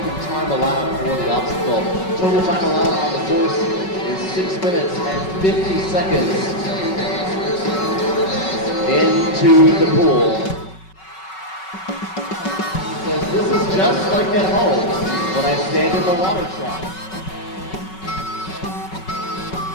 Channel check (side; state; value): right; late; 5.3 ms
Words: of time allowed for the obstacle. Total time allowed on the course is 6 minutes and 50 seconds into the pool. He says, this is just like at home when I stand in the water trough.